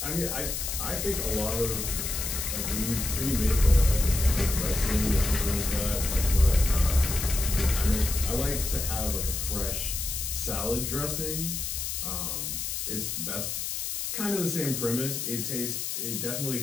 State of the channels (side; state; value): left; noise; hiss, 3 dB below the sound